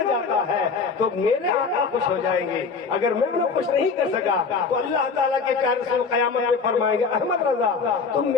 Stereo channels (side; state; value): right; quieter; 5.0 dB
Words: جاتا ہے تو میرے آقا خوش ہو جائیں گے، اگر میں انہیں خوش نہیں کر سکا تو اللہ تعالیٰ کے پیارے رسول قیامت میں فرمائیں گے احمد رضا تم